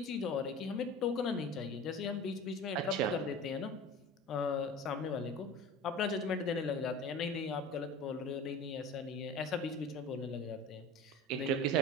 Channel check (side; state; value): both; normal; correlation 0.36